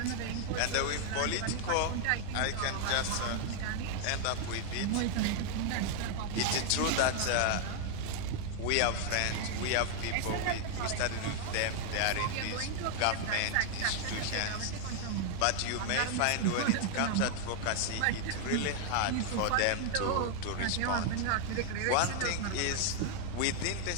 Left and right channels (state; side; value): different; both; correlation 0.00